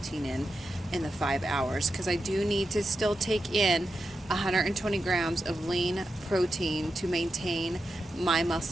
in the 5 hours, because I do need to still take in 120 grams of lean protein to maintain my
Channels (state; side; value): normal; both; correlation 0.88